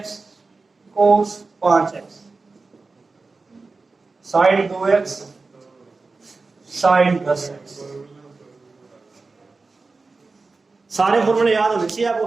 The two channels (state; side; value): quieter; left; 3.9 dB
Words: कोस 5x sign 2x sign 10x। सारे फॉर्मूले याद होने चाहिए आपको,